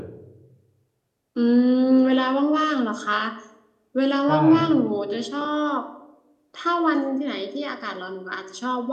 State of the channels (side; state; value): both; identical; correlation 1.00